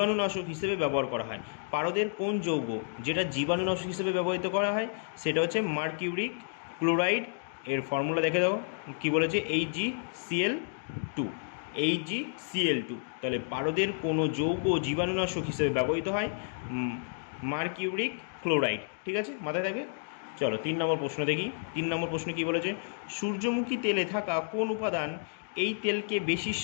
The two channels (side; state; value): right; silent; digital silence